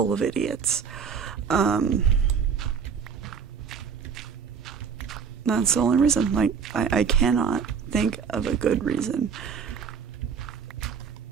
of idiots. That's the only reason. Like, I cannot think of a good reason.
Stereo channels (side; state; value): left; quieter; 6.4 dB